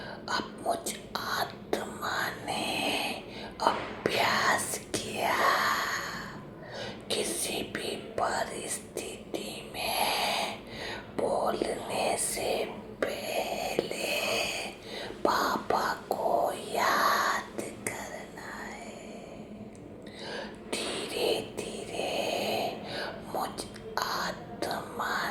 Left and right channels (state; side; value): identical; both; correlation 1.00